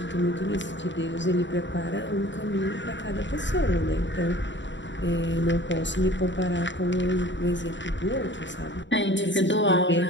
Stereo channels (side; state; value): right; late; 0.53 ms